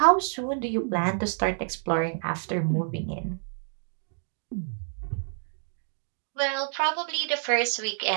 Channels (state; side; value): silent; left; digital silence